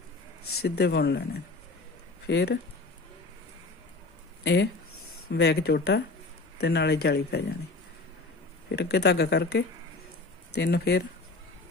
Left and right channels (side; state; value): right; quieter; 3.5 dB